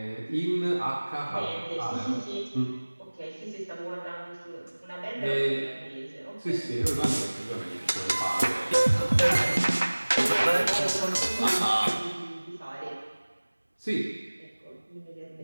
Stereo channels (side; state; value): both; inverted; correlation -1.00